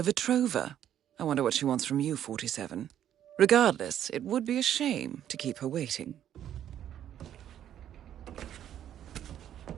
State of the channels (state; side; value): quieter; left; 10.6 dB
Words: Vetrova. I wonder what she wants from you, 47. Regardless, it would be a shame to keep her waiting.